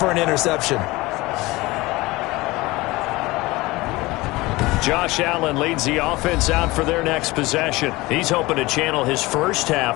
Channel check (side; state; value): right; quieter; 21.0 dB